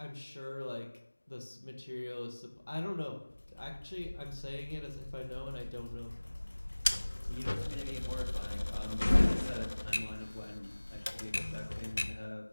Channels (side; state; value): both; inverted; correlation -1.00